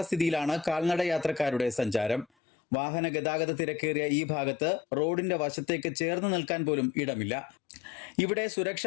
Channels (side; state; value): right; drops out; at 2.2 s